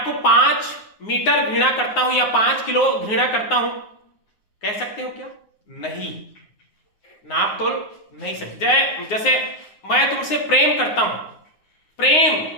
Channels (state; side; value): late; right; 9.5 ms